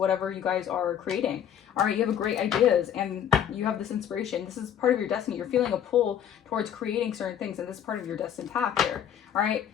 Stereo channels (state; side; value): quieter; right; 9.5 dB